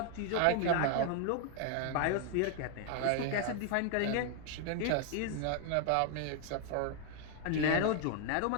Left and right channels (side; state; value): both; different; correlation 0.00